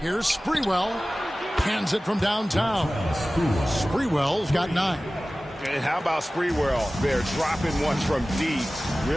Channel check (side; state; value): both; normal; correlation 0.97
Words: Sprewell. Hands it from downtown. Sprewell's got 9. And how about Sprewell there, dropping one from deep.